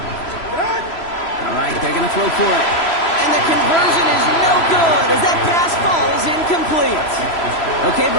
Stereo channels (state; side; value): late; right; 3.0 ms